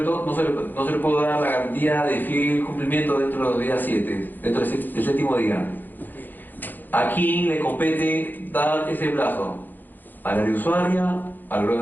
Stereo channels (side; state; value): right; late; 0.088 ms